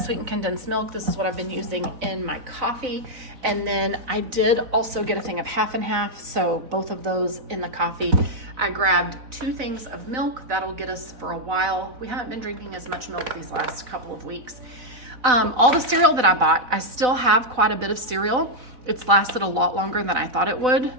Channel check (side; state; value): left; late; 4.0 ms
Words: condensed milk. This is what I've been using in my coffee. And then I did also get a thing of half and half. So both of those in the coffee. I grabbed 2 things of milk. That'll get us for a while. We haven't been drinking as much milk these last couple of weeks. All the cereal that I bought, I still have quite a bit of cereal. It's lasted a lot longer than I thought it would.